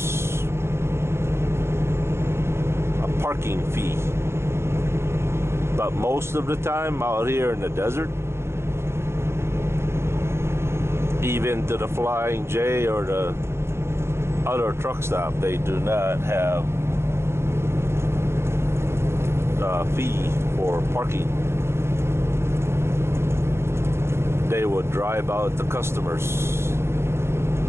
a parking fee. But most of the time out here in the desert, even to the Flying J or the other truck stop, they do not have a fee for parking. They would drive out the customers.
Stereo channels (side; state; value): left; late; 0.12 ms